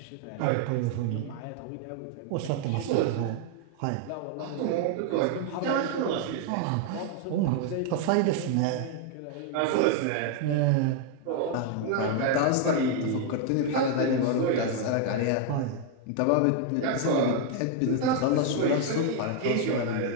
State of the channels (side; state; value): both; different; correlation 0.00